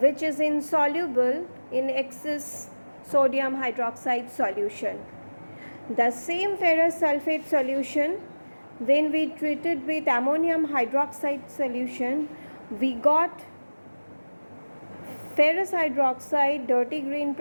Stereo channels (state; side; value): inverted; both; correlation -1.00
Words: is insoluble in excess sodium hydroxide solution. The same ferrous sulfate solution, when we treated with ammonium hydroxide solution, we got ferrous hydroxide dirty green